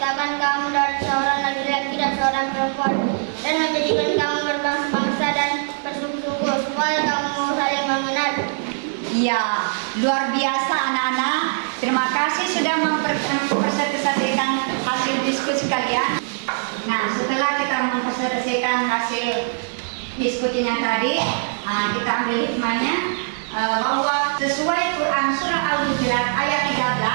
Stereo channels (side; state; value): left; silent; digital silence